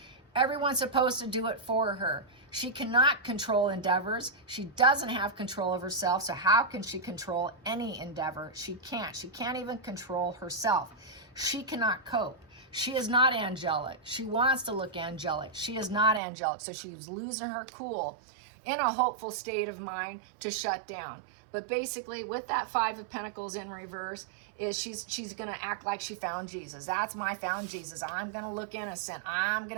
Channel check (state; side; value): drops out; left; at 16.2 s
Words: Everyone's supposed to do it for her. She cannot control endeavors. She doesn't have control of herself. So how can she control any endeavor? She can't. She can't even control herself. She cannot cope. She is not angelic. She wants to look angelic. She is not angelic. So she was losing her cool in a hopeful state of mind to shut down. But basically with that Five of Pentacles in reverse is she's going to act like she found Jesus. That's my found Jesus. I'm going to look innocent. I'm